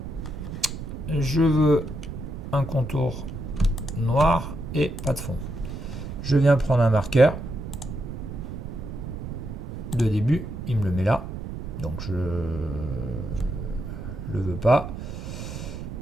Je veux un contour noir et pas de fond. Je viens prendre un marqueur de début, il me le met là, donc je le veux pas.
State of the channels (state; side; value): noise; right; rumble, 8 dB below the sound